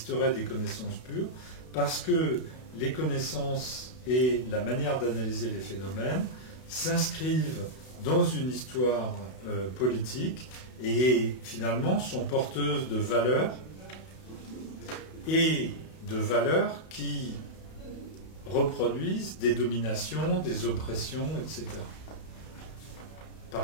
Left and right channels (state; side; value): late; right; 32 ms